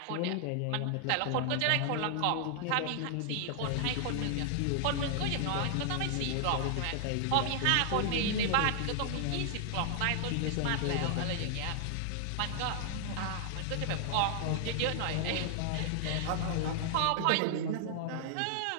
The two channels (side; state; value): both; different; correlation 0.00